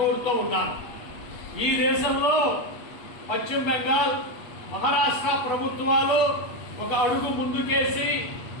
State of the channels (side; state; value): right; late; 8.3 ms